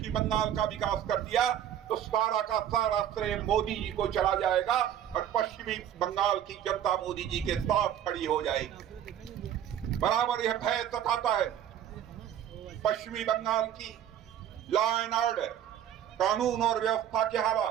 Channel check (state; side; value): quieter; left; 10.3 dB